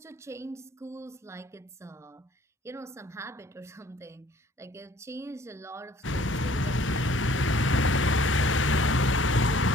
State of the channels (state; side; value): normal; both; correlation 0.56